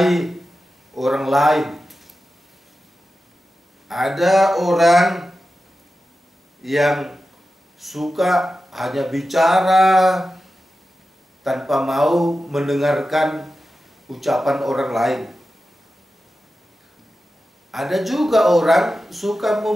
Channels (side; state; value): both; normal; correlation 0.93